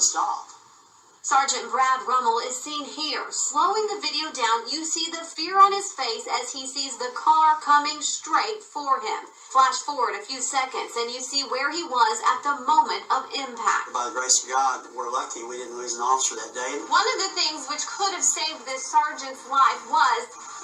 stop. Sergeant Brad Rummel is seen here. Slowing the video down, you see the fear on his face as he sees the car coming straight for him. Flash forward a few seconds and you see where he was at the moment of impact. By the grace of God, we're lucky we didn't lose an officer that day. One of the things which could have saved this sergeant's life was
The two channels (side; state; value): both; identical; correlation 1.00